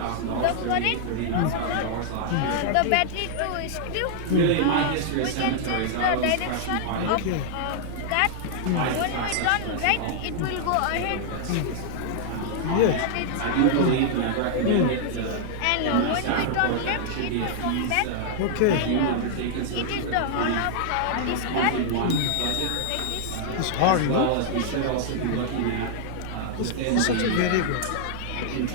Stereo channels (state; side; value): different; both; correlation -0.01